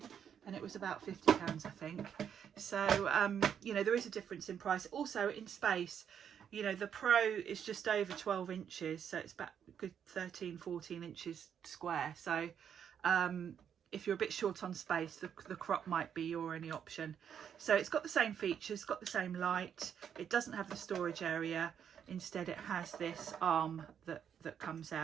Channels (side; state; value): left; quieter; 8.3 dB